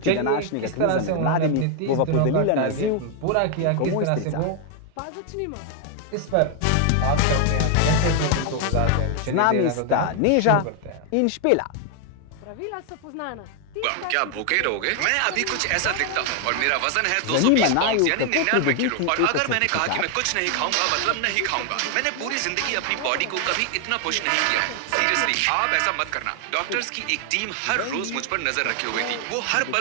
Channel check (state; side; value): different; both; correlation 0.00